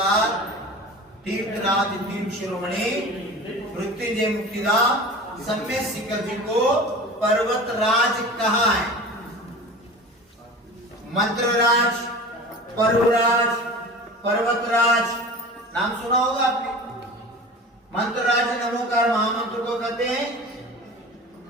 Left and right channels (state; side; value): normal; both; correlation 0.36